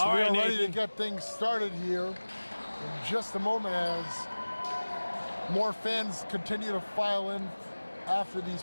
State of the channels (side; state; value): both; inverted; correlation -1.00